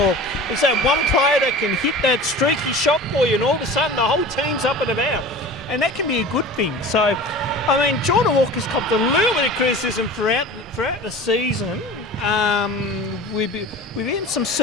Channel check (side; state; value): both; normal; correlation 0.38